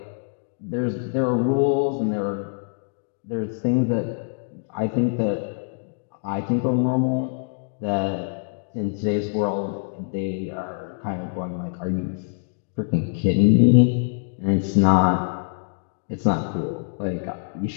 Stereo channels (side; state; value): right; silent; digital silence